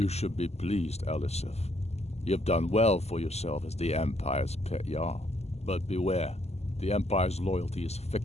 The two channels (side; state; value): right; late; 0.31 ms